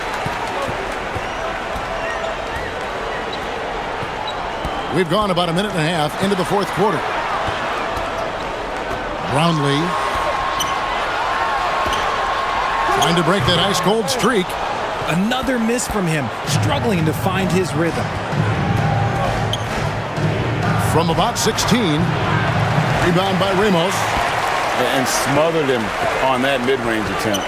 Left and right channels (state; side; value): identical; both; correlation 1.00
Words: We've gone about a minute and a half into the fourth quarter. Brownlee trying to break that ice-cold streak. Another miss from him, struggling to find his rhythm. From about 16, rebound by Ramos. And smothered him on that mid-range attempt.